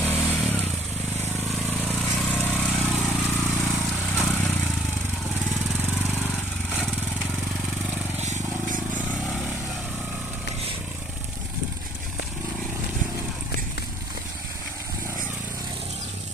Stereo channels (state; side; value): normal; both; correlation 0.59